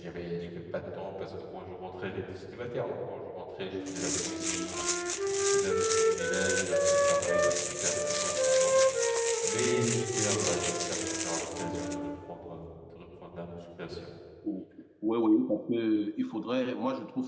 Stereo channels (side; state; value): both; identical; correlation 1.00